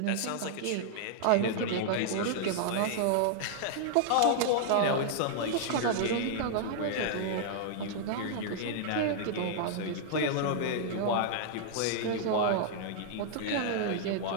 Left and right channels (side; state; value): both; different; correlation -0.01